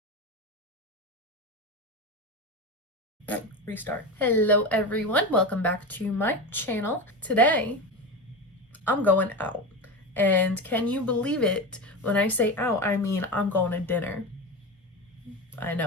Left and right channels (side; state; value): both; normal; correlation 0.21